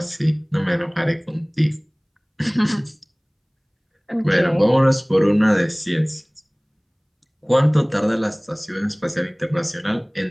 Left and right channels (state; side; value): identical; both; correlation 1.00